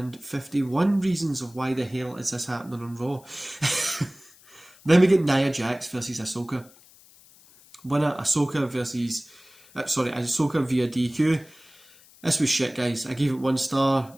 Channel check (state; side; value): noise; left; hiss, 25 dB below the sound